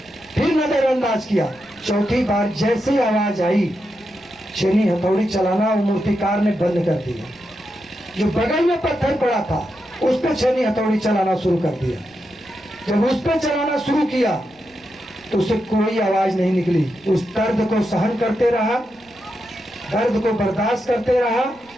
फिर नजरअंदाज किया। चौथी बार जैसे आवाज आई, छेनी हथौड़ी चलाना वो मूर्तिकार ने बंद कर दिया। जो बगल में पत्थर पड़ा था उस पर छेनी हथौड़ी चलाना शुरू कर दिया। जब उस पर चलाना शुरू किया तो उससे कोई आवाज नहीं निकली। उस दर्द को सहन करते रहा, दर्द को बर्दाश्त करते रहा।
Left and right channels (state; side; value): noise; right; rumble, 30 dB below the sound